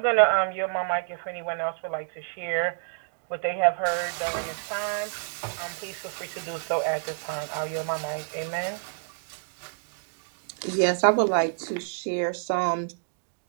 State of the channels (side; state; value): left; silent; digital silence